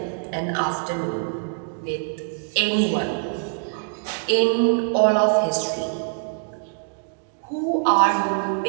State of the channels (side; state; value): left; silent; digital silence